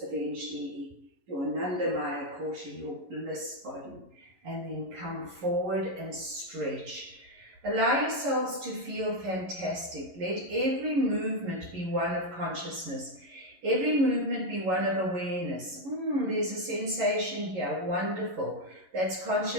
eventually your Anandamaya Kosha, your bliss body. And then come forward and stretch. Allow yourselves to feel fantastic. Let every movement be one of consciousness. Every movement be one of awareness. There's a sensation here, wonderful. That's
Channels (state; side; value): late; left; 11 ms